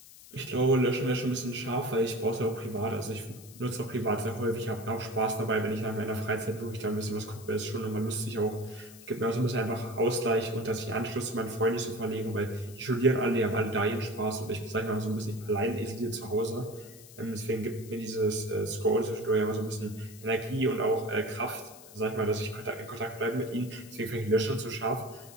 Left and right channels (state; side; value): noise; left; hiss, 19 dB below the sound